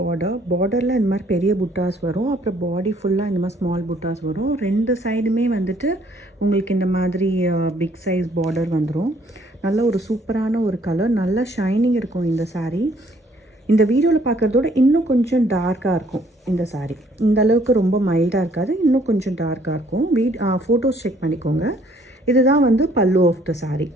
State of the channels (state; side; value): normal; both; correlation 0.63